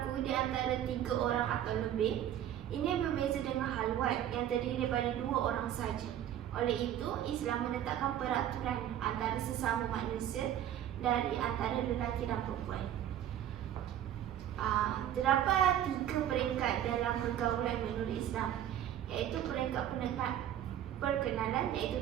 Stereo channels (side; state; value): left; quieter; 11.0 dB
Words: di antara 3 orang atau lebih. Ini berbeza dengan halwat yang terdiri daripada 2 orang saja. Oleh itu, Islam menetapkan peraturan antara sesama manusia dari antara lelaki dan perempuan. Terdapat 3 peringkat dalam pergaulan menurut Islam, iaitu peringkat perkenalan, iaitu